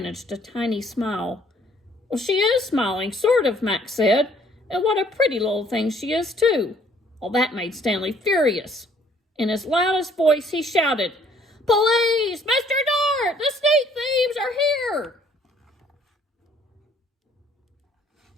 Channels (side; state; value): both; normal; correlation 0.61